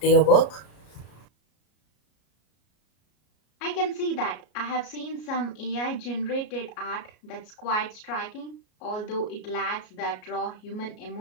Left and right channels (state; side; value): late; right; 33 ms